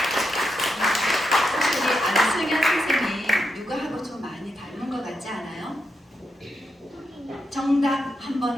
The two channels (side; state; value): both; normal; correlation 0.84